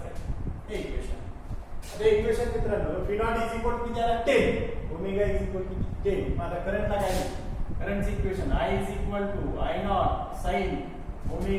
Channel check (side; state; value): both; identical; correlation 1.00